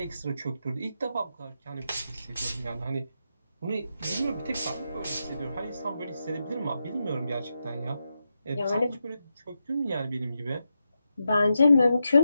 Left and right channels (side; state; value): both; inverted; correlation -0.87